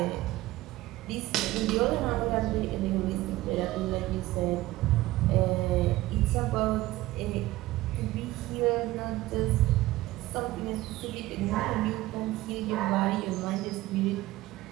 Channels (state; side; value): quieter; left; 17.4 dB